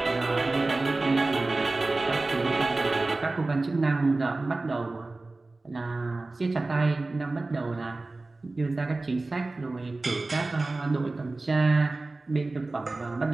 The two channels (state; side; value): quieter; left; 3.2 dB